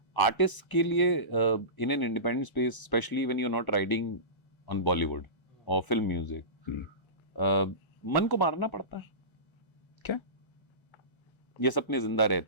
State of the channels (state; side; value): late; right; 1.3 ms